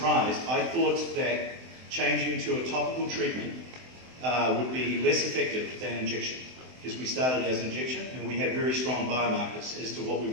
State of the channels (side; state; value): left; late; 24 ms